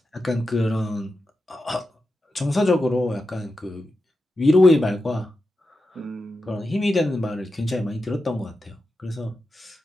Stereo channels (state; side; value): normal; both; correlation 0.90